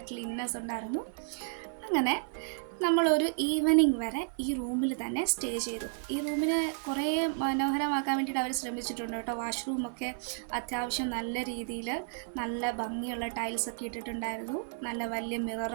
ക്ലീൻനെസ് ഉണ്ടായിരുന്നു. അങ്ങനെ നമ്മളൊരു ഈവനിങ് വരെ ഈ റൂമിൽ തന്നെ സ്റ്റേ ചെയ്തു. ഈ റൂമിനെ കുറേ മനോഹരമാക്കാൻ വേണ്ടിയിട്ട് അവർ ശ്രമിച്ചിട്ടുണ്ട് കേട്ടോ. വാഷ്റൂമൊക്കെ അത്യാവശ്യം നല്ല രീതിയിൽ നല്ല ഭംഗിയുള്ള ടൈൽസൊക്കെ ഇട്ടിട്ടുണ്ടായിരുന്നു. നല്ല വലിയ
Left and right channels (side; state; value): left; silent; 56 dB below the other